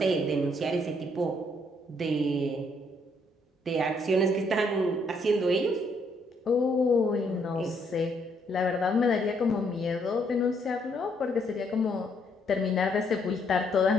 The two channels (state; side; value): normal; both; correlation 0.70